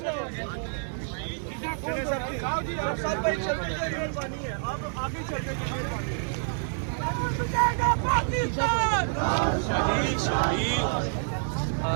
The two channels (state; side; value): silent; left; 59 dB below the other